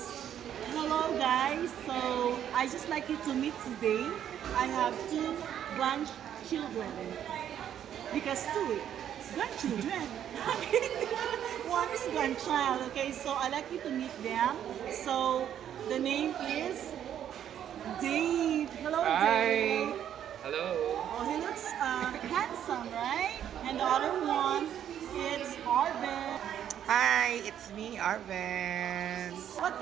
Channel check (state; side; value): quieter; left; 10.0 dB